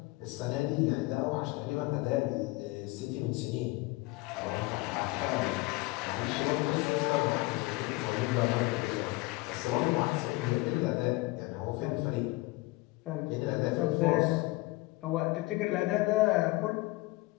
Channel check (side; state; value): right; quieter; 21.7 dB